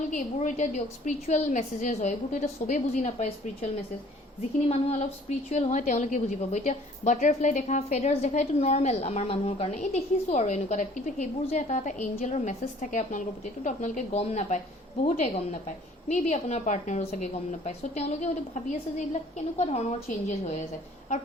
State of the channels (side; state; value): both; normal; correlation 0.54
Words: এইবোৰো এতিয়া দিয়ক স্পিৰিচুৱেল মেছেজেছ হয় এইবোৰতো এতিয়া চবেই বুজি নাপায় স্পিৰিচুৱেল মেছেজ যিখিনি মানুহ অলপ স্পিৰিচুৱেল হয় তেওঁলোকে বুজি পাব এতিয়া বাটাৰফ্লাই দেখা ফেডাৰ্ছ দেখা এইটো নৰ্মেল আমাৰ মানুহৰ কাৰণে এই দেখিছোঁ আৰু এনেকুৱা টাইপ কিন্তু সেইবোৰ যে এটা এটা এঞ্জেলৰ মেছেজ থাকে আপোনালোকৰ প্ৰতি এইটোতো আপোনালোকে গম নাপায় বহুতে গম নাপায় মে বি আপোনাৰ পাৰ্টনাৰো চাগে গম নাপায় চ' তেওঁলোকে হয়তো ভাবি আছে যে এইবিলাক কেনেকুৱা ধৰণৰ চেঞ্জেছ হৈ আছে আৰু